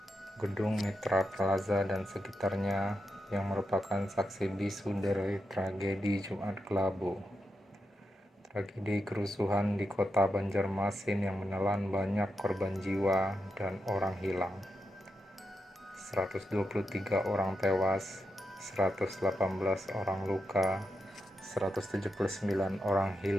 Gedung Mitra Plaza dan sekitarnya yang merupakan saksi bisu dari tragedi Jumat Kelabu. Tragedi kerusuhan di kota Banjarmasin yang menelan banyak korban jiwa dan orang hilang. 123 orang tewas, 118 orang luka, 179 orang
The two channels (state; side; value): normal; both; correlation 0.86